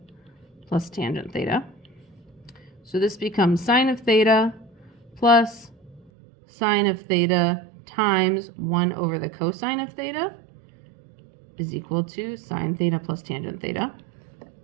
plus tangent theta. So this becomes sine of theta plus sine of theta times 1 over the cosine of theta is equal to sine theta plus tangent theta.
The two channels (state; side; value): drops out; left; at 6.1 s